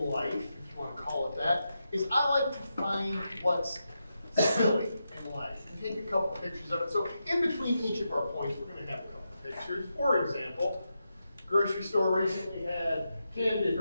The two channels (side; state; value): both; inverted; correlation -0.87